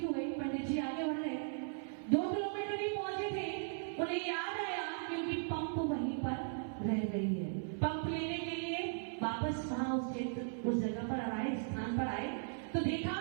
हो गई, पंडित जी आगे बढ़ गए। 2 किलोमीटर ही पहुंचे थे, उन्हें याद आया कि उनकी पंप वहीं पर रह गई है। पंप लेने के लिए वापस वहां उस जगह पर आए, स्थान पर आए तो देखा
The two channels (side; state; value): left; silent; 53 dB below the other